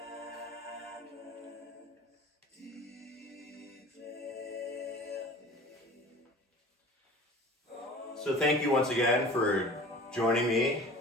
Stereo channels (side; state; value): both; normal; correlation 0.42